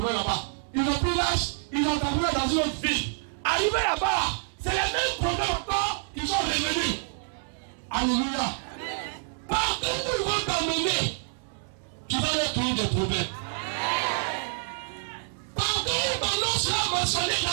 là-bas. Ils ont pris l'âge, ils ont terminé dans une autre ville. Arrivé là-bas, c'est les mêmes problèmes encore, ils sont revenus. Alléluia. Partout où ils vont t'emmener, tu vas leur créer des problèmes. Partout où ton nom sera mentionné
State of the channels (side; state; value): left; silent; 60 dB below the other